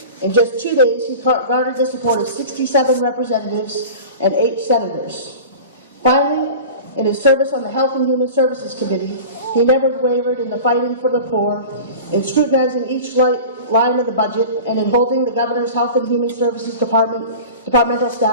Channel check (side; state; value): both; inverted; correlation -0.36